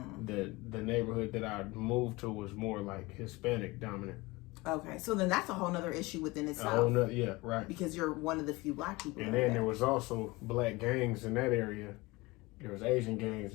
neighborhood that I moved to was more like Hispanic dominant. Okay, so then that's a whole nother issue within itself. Yeah, right. Because you're one of the few Black people. And then there was also Black gangs in that area. There was Asian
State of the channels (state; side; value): quieter; right; 22.1 dB